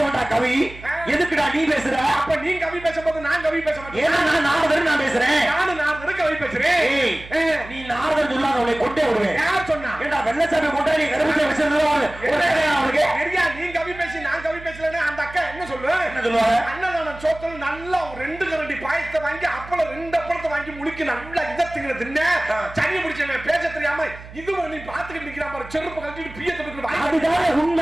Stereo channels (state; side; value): noise; right; hum, 16 dB below the sound